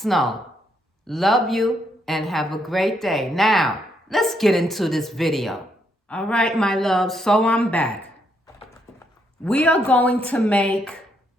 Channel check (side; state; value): both; normal; correlation 0.75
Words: Love you and have a great day. Now, let's get into this video. All right, my love, so I'm back. We are going to make